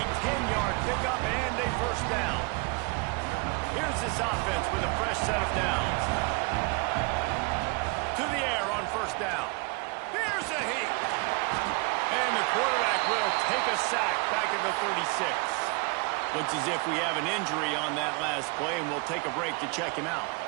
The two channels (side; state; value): left; quieter; 30.1 dB